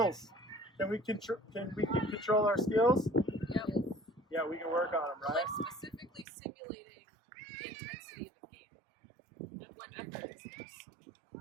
Can we control our skills? Yep. Yeah, we can work on them, right? Like specifically simulating the intensity of the game. And when effort is skills.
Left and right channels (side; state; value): left; drops out; at 6.2 s